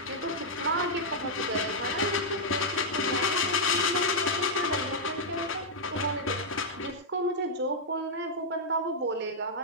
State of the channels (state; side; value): normal; both; correlation -0.06